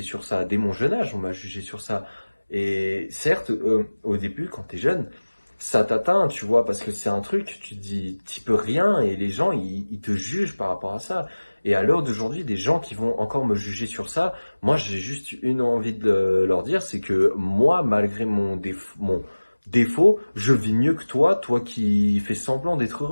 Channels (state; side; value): inverted; both; correlation -1.00